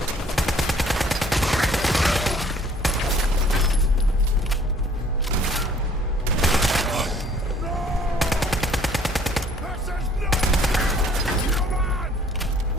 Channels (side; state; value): both; normal; correlation 0.58